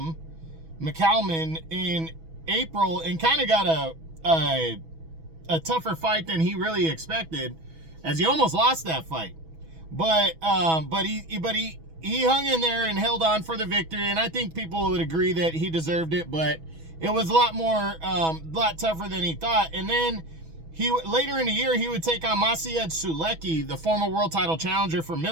in April and kind of got a tougher fight than he really expected, as he almost lost that fight. But he hung in there and held on for the victory, and I think people would agree that he deserved it, but it was a lot tougher than he thought. And then later in the year, he would take on Maciej Sulecki, the former world title challenger for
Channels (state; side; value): late; left; 6.2 ms